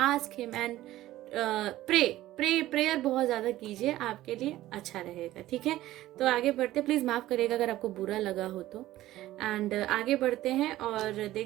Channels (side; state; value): left; quieter; 15.4 dB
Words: him and prayer बहुत ज्यादा कीजिए, आपके लिए अच्छा रहेगा, ठीक है। तो आगे बढ़ते, प्लीज माफ करिएगा अगर आपको बुरा लगा हो तो। एंड आगे बढ़ते हैं और